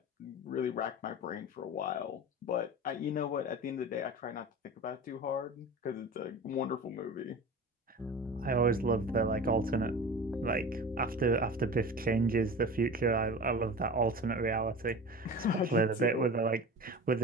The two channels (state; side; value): normal; both; correlation 0.34